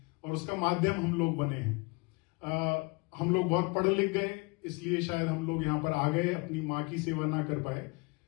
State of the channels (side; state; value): right; quieter; 28.3 dB